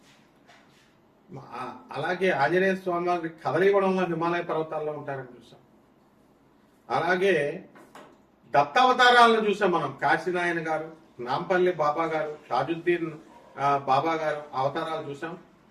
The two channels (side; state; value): both; identical; correlation 1.00